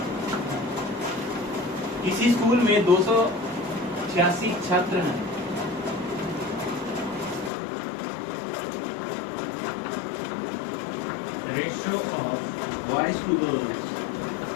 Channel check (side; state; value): right; drops out; at 7.5 s